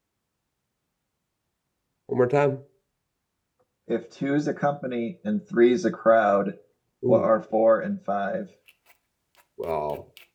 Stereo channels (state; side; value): identical; both; correlation 1.00